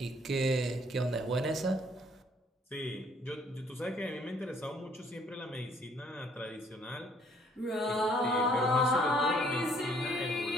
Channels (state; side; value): normal; both; correlation 0.63